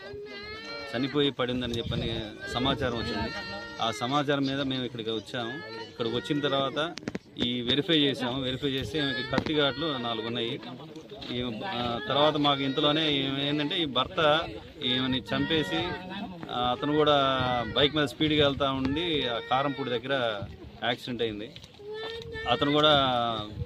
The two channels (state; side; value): identical; both; correlation 1.00